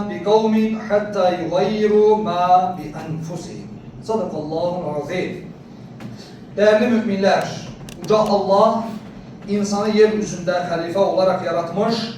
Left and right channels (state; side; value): identical; both; correlation 1.00